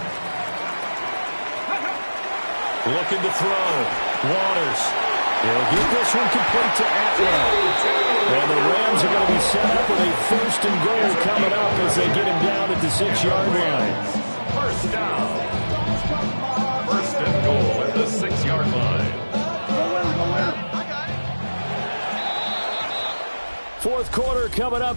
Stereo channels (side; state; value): both; inverted; correlation -1.00